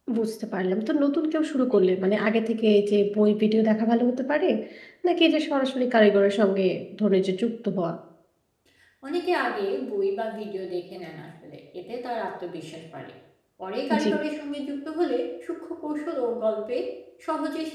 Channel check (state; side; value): identical; both; correlation 1.00